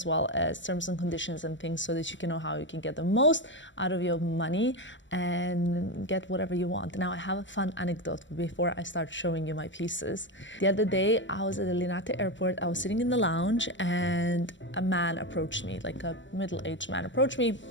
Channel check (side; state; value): right; late; 0.54 ms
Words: well as terms and conditions and things so that you can know how you can get the most out of your money and get whatever you want. Now I have a fun anecdote before I start showing you my pieces. The other day I was at the Linate airport, I was sitting in the lounge and a man approached me, like a middle-aged man approached me,